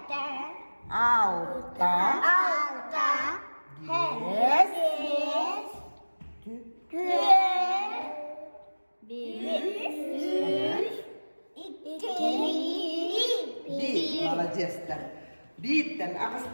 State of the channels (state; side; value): inverted; both; correlation -1.00